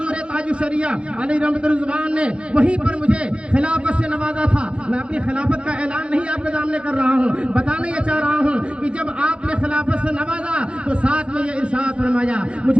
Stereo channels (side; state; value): left; late; 0.058 ms